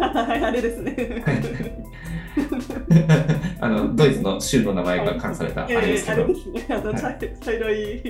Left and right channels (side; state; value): both; identical; correlation 1.00